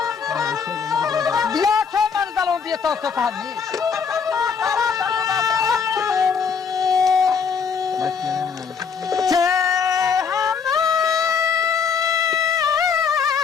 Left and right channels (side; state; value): right; quieter; 6.1 dB